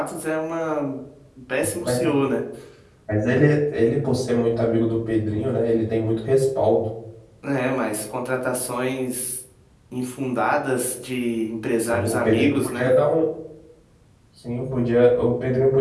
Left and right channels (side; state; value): both; identical; correlation 1.00